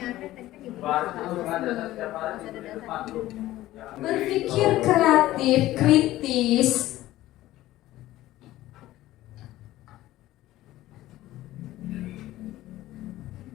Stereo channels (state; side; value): quieter; right; 15.6 dB